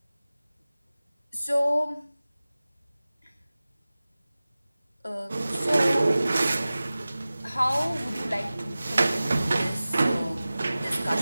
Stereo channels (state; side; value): inverted; both; correlation -0.97